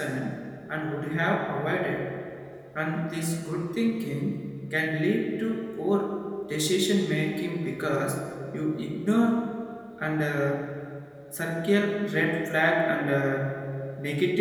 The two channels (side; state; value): both; identical; correlation 1.00